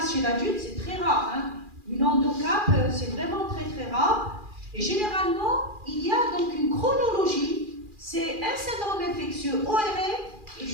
chez l'adulte, c'est très rare. Hein. Une endocap, c'est vraiment très très rare. Et généralement, il y a donc une chronologie. C'est un syndrome infectieux ORL et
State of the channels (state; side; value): late; left; 2.4 ms